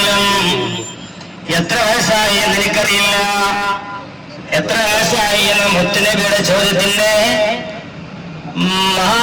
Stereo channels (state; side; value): identical; both; correlation 1.00